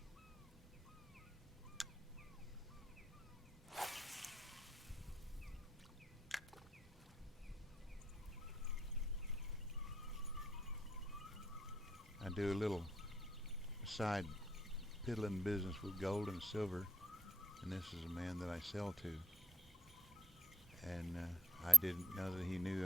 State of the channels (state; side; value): normal; both; correlation 0.72